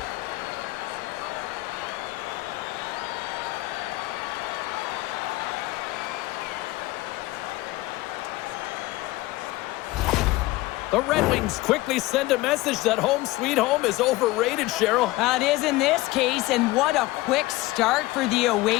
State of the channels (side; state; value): right; quieter; 19.4 dB